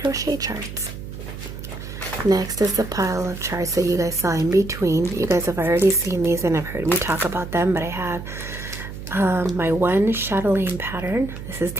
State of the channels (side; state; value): right; noise; hum, 10 dB below the sound